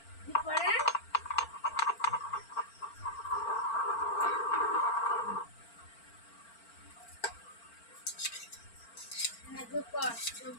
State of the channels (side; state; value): right; late; 4.4 ms